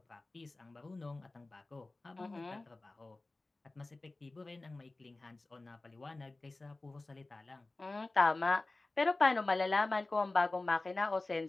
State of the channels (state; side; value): quieter; right; 3.1 dB